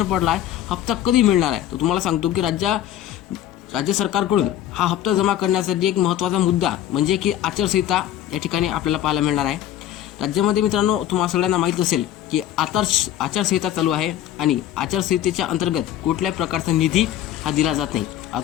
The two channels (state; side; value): quieter; right; 11.8 dB